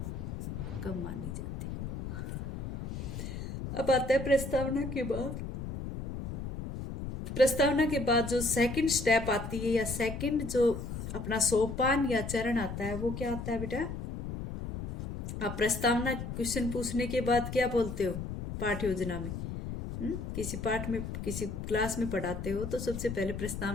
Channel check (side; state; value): left; noise; rumble, 6 dB below the sound